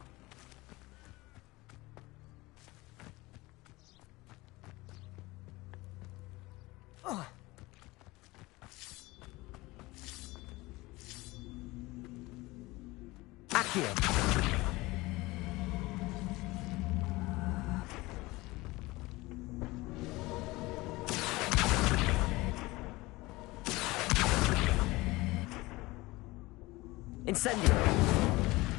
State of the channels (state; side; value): quieter; right; 21.0 dB